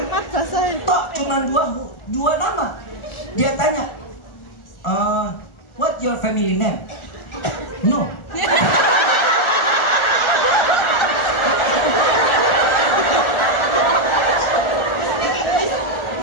Tok cuma dua nama. Dia tanya, what your family name? No.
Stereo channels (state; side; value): late; right; 1.4 ms